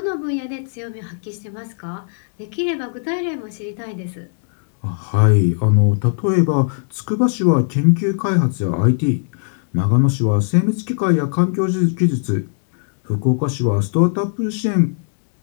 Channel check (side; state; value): right; silent; digital silence